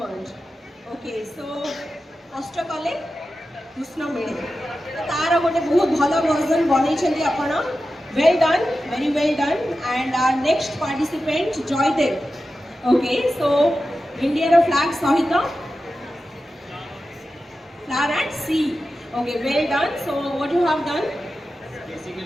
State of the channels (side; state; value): both; normal; correlation 0.92